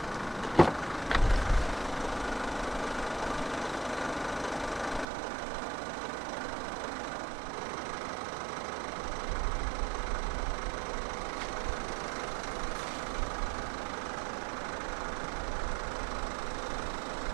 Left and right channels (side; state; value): left; drops out; at 5.1 s